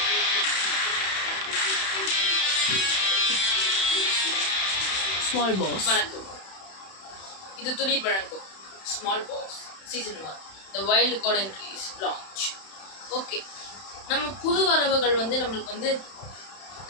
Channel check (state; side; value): late; right; 31 ms